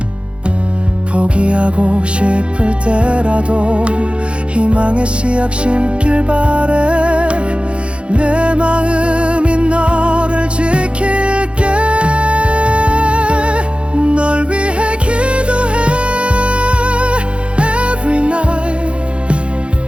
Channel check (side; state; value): left; late; 0.059 ms